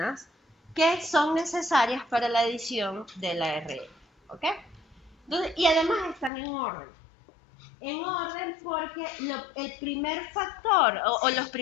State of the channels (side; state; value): right; drops out; at 6.3 s